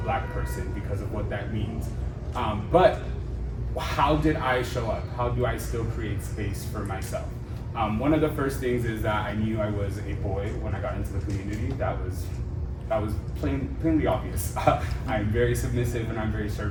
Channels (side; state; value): both; identical; correlation 1.00